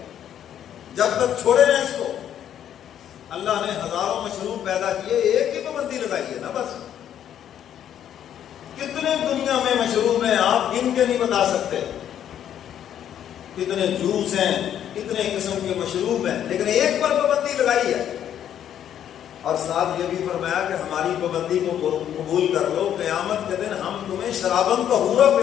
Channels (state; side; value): quieter; right; 10.1 dB